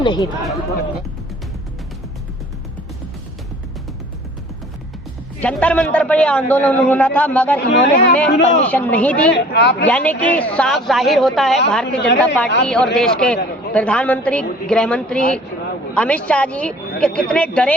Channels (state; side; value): normal; both; correlation 0.49